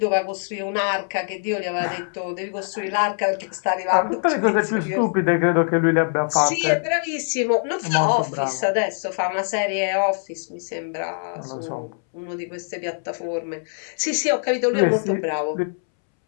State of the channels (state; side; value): silent; right; 63 dB below the other